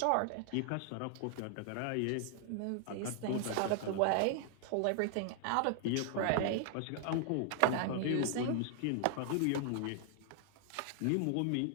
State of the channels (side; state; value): both; different; correlation 0.00